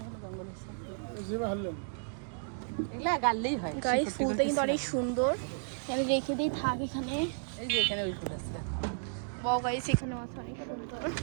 এগুলা গাললেই হয়। গাইস ফুলটা কিন্তু অনেক সুন্দর, এখানে রেখে দিই থাক এখানে। এই যে এখানে ওই ফুল আছে, বাও গাইস এখানে আছে অনেক সুন্দর।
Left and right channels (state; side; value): silent; left; digital silence